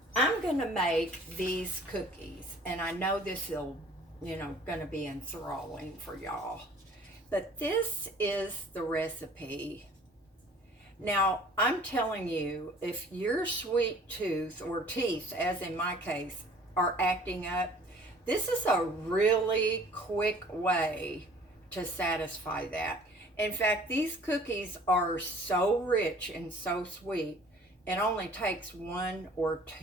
I'm gonna make these cookies, and I know this will, gonna be enthralling for y'all. But this is the recipe. Now, I'm telling you, if your sweet tooth or teeth, as in my case, are acting up, this is a really quick way to satisfy that. In fact, these cookies are so rich and so sweet, it only takes one or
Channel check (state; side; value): normal; both; correlation 0.51